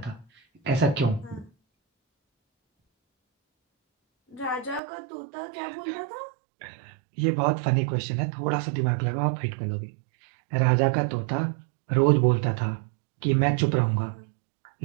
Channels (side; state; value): left; drops out; at 4.8 s